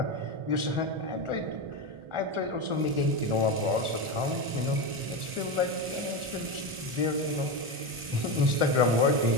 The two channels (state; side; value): late; left; 1.4 ms